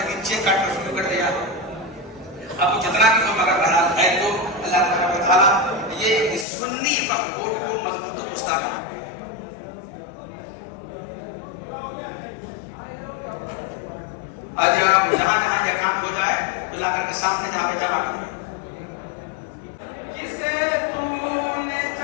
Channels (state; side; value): drops out; right; at 6.5 s